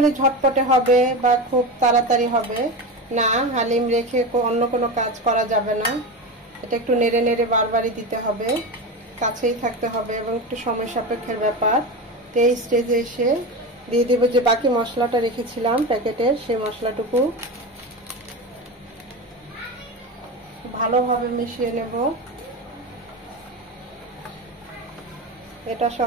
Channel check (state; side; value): normal; both; correlation 0.22